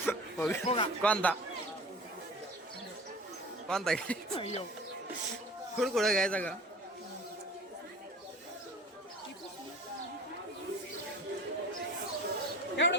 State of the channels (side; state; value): both; normal; correlation 0.39